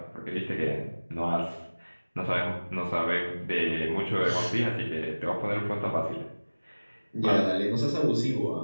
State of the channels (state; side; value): inverted; both; correlation -1.00